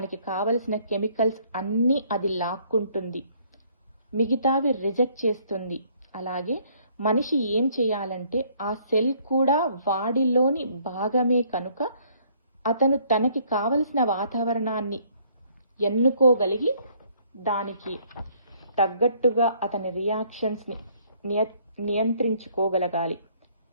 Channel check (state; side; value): inverted; both; correlation -0.63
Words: కావలసిన కెమికల్స్ అన్నీ అది లాక్కుంటుంది, మిగతావి రిజెక్ట్ చేస్తుంది. అలాగే మనిషి ఏం చేయాలంటే, ఆ సెల్ కూడా వాడిలోని భాగమే కనుక అతను తనకి కావలసిన వాతావరణాన్ని ఎన్నుకోగలిగి దానికి తగ్గట్టుగా అతని రియాక్షన్స్ని నియంత్రించుకోగలగాలి.